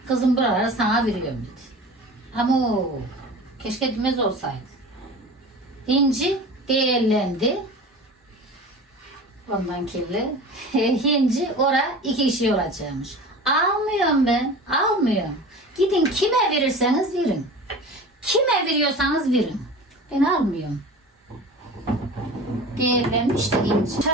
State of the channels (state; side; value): normal; both; correlation 0.36